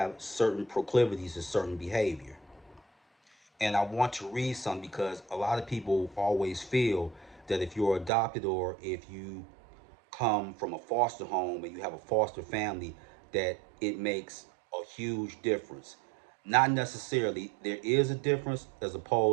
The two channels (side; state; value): left; drops out; at 8.1 s